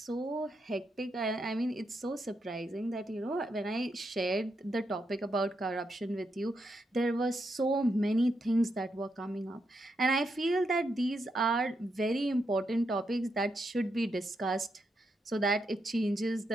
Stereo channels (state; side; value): normal; both; correlation 0.82